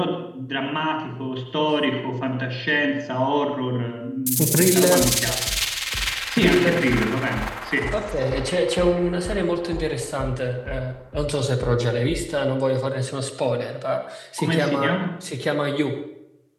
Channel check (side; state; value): both; identical; correlation 1.00